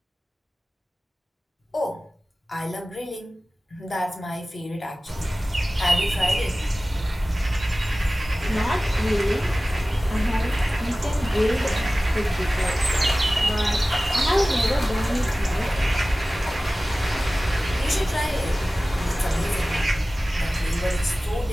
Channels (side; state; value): both; normal; correlation 0.97